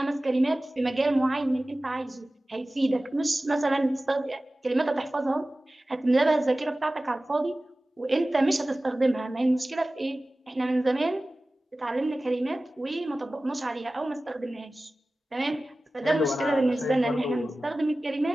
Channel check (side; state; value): both; normal; correlation 0.97